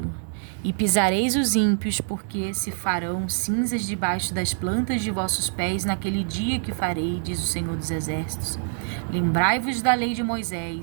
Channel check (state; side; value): silent; left; digital silence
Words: e pisareis os ímpios, porque se farão cinzas debaixo das plantas de vossos pés naquele dia que farei, diz o Senhor dos Exércitos. Lembrai-vos da lei de